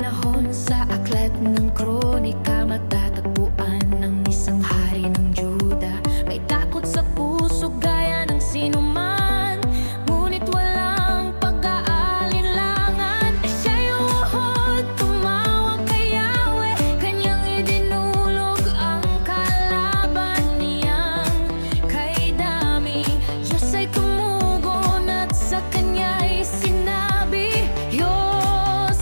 sa aklat ng kronika, matatagpuan ng isang hari ng Juda. May takot sa puso gaya ng sinuman, ngunit walang pag-aalinlangan. Siya'y umuhod, tumawag kay Yahweh, kanyang idinulog ang kalaban niyang kay Dami. Diyos ay tumugon at sa kanya'y sinabi,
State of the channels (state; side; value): inverted; both; correlation -1.00